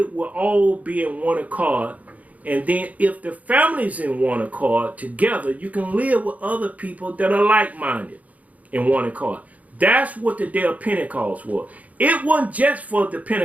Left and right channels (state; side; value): late; left; 0.072 ms